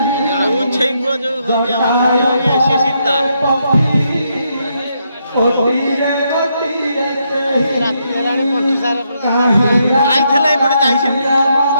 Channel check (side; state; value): both; inverted; correlation -0.78